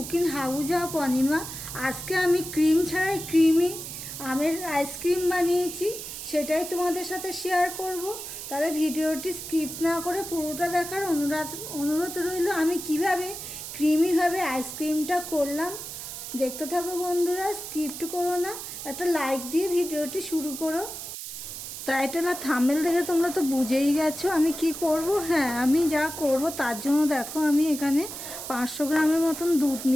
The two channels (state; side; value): noise; right; hiss, 9 dB below the sound